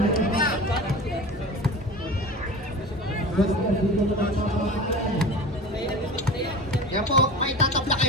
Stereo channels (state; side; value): normal; both; correlation 0.34